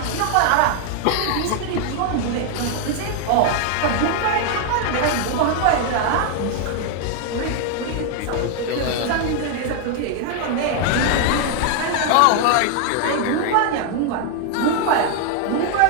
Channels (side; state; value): both; different; correlation 0.00